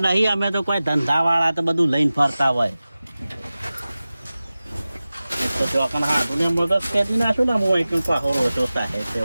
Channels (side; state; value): both; inverted; correlation -0.97